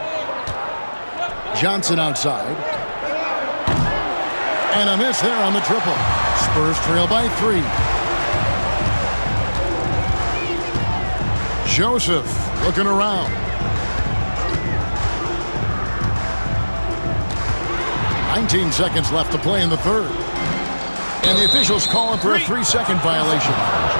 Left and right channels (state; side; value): inverted; both; correlation -1.00